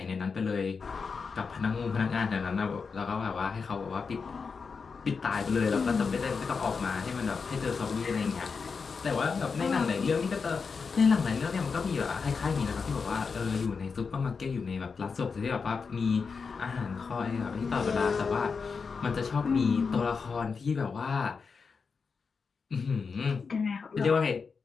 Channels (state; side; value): quieter; right; 5.2 dB